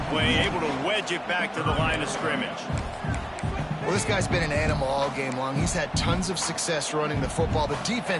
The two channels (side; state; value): both; identical; correlation 1.00